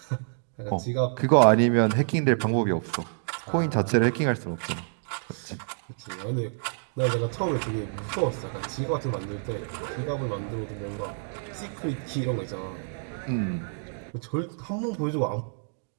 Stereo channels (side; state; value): left; silent; digital silence